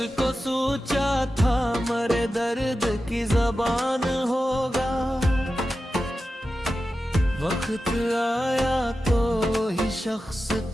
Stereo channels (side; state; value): both; normal; correlation 0.93